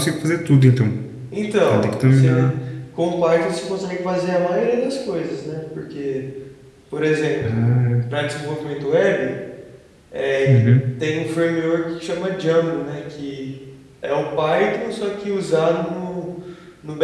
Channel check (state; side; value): identical; both; correlation 1.00